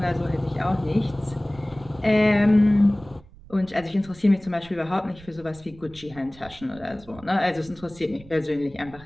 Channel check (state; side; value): noise; right; rumble, 22 dB below the sound